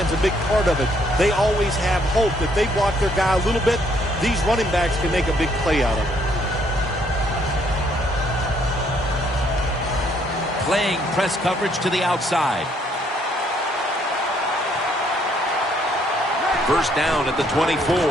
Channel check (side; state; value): both; normal; correlation 0.67